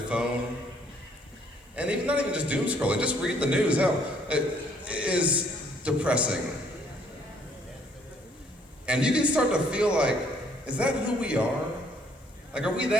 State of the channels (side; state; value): both; normal; correlation 0.64